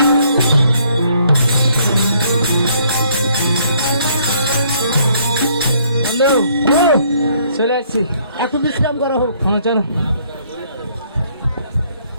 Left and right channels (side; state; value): both; inverted; correlation -0.65